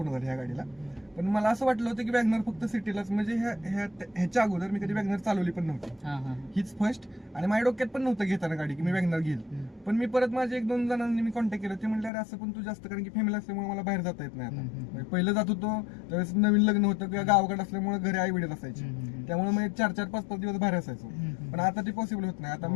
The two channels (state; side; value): drops out; right; at 12.1 s